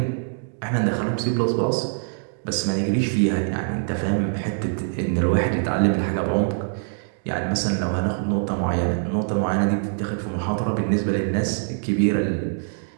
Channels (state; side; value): silent; left; digital silence